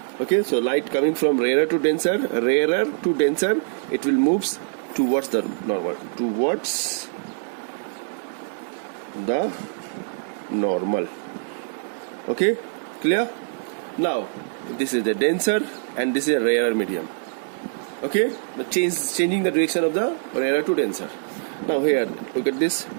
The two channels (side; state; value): left; silent; digital silence